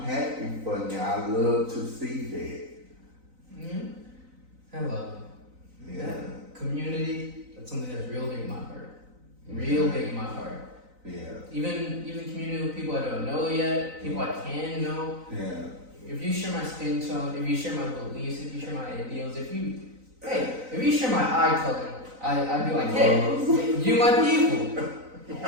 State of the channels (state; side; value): late; left; 3.9 ms